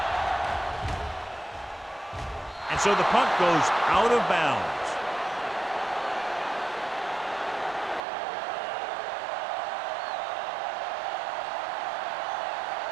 And so the punt goes out of bounds.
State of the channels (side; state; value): left; drops out; at 8.0 s